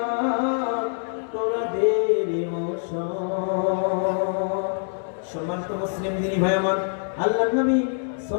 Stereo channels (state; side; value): silent; right; 62 dB below the other